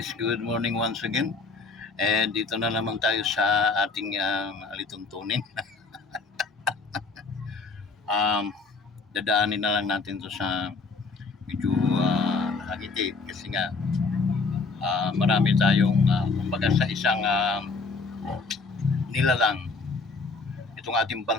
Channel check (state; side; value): quieter; right; 4.2 dB